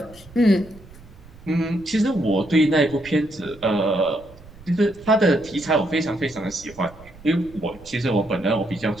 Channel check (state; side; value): noise; right; rumble, 21 dB below the sound